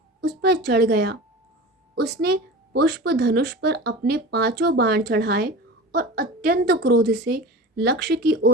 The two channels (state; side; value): normal; both; correlation 0.33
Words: उस पर चढ़ गया। उसने पुष्प धनुष पर अपने 5 बाण चढ़ाए और अत्यंत क्रोध से लक्ष्य की